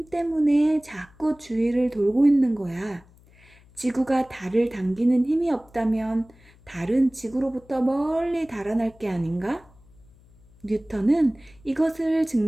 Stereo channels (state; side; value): noise; left; hum, 27 dB below the sound